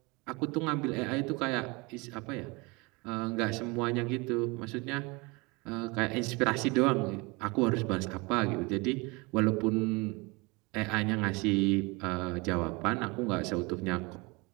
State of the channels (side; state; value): left; quieter; 26.6 dB